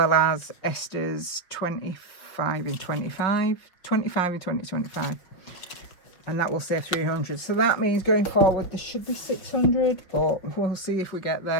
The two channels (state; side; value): late; right; 5.2 ms